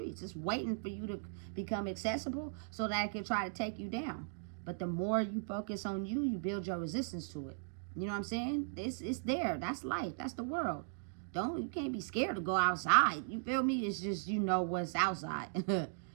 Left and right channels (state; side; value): silent; left; digital silence